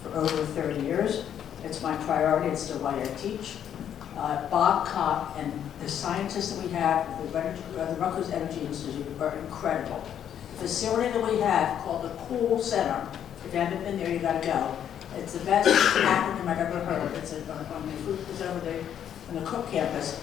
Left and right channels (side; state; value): right; quieter; 9.5 dB